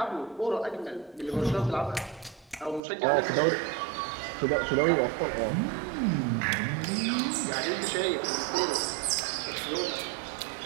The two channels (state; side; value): drops out; left; at 2.8 s